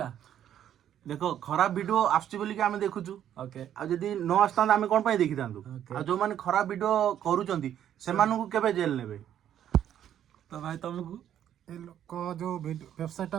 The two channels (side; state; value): left; quieter; 10.4 dB